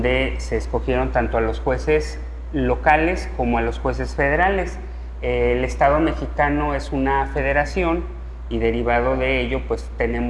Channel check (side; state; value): both; identical; correlation 1.00